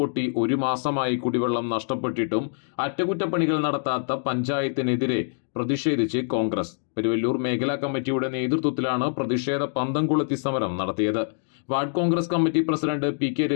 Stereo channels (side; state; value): right; silent; digital silence